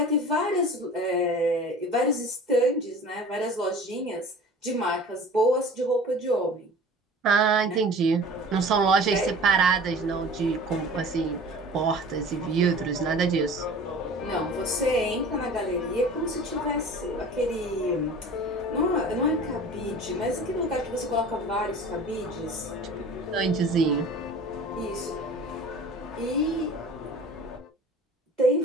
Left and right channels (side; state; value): both; normal; correlation 0.42